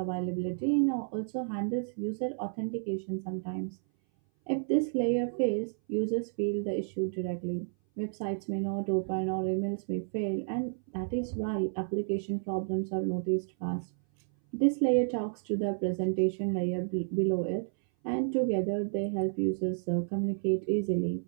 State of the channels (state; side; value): silent; left; 57 dB below the other